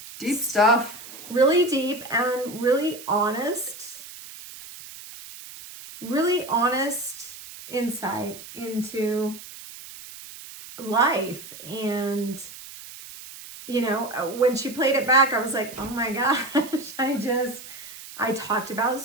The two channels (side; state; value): right; noise; hiss, 15 dB below the sound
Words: deep stuff. Really deep and really honest insight into life. And when she played it back, I was like, oh my gosh, I talked about